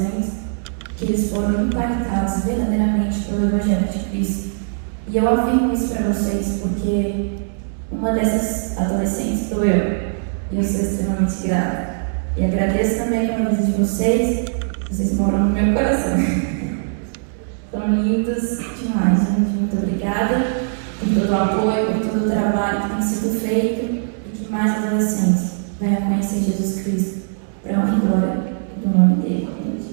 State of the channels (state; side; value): silent; left; digital silence